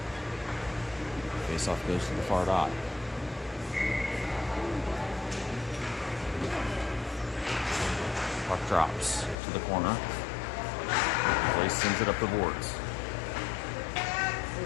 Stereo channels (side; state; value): right; drops out; at 9.3 s